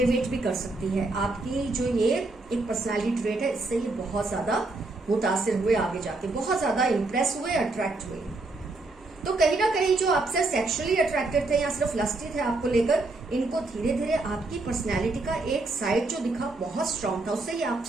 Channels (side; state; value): left; quieter; 3.2 dB